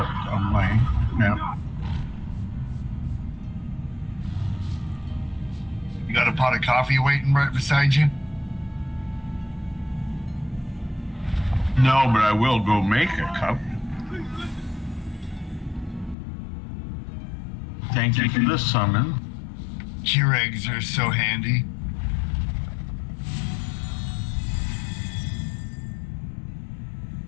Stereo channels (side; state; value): right; drops out; at 16.2 s